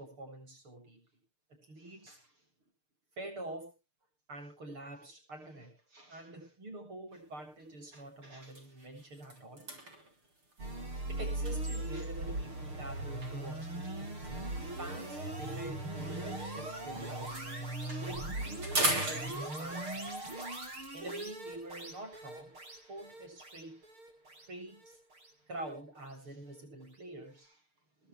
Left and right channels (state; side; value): late; left; 6.6 ms